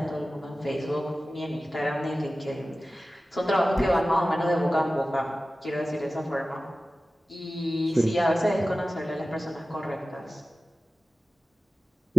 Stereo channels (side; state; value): both; normal; correlation 0.96